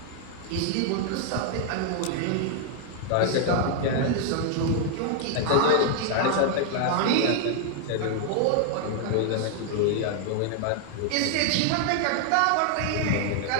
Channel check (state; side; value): different; both; correlation 0.00